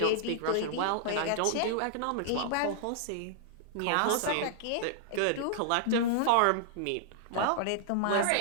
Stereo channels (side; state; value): both; different; correlation -0.01